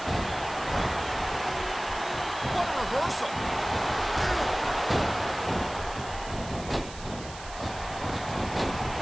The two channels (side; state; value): right; noise; hiss, 15 dB below the sound